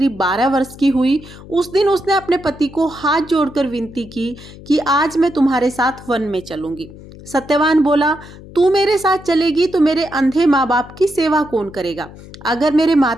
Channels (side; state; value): left; noise; hum, 18 dB below the sound